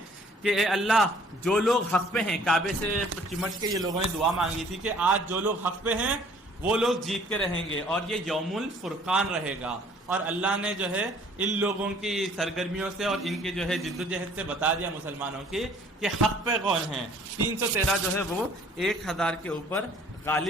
کہ اے اللہ، جو لوگ حق پہ ہیں، کعبے سے چمٹ کے یہ لوگوں نے دعا مانگی تھی کہ آج جو لوگ حق پہ ہیں وہ لوگ جیت کے رہیں گے اور یہ یوم الفرقان رہے گا، اور اللہ نے جو ہے ان لوگوں کی سرگرمیوں سے اور ان کی جو ہے جد و جہد سے بتا دیا مسلمانوں کی کہ حق پہ کون ہیں۔ 313 جو ہے وہ 1000 کے اوپر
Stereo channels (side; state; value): both; normal; correlation 0.56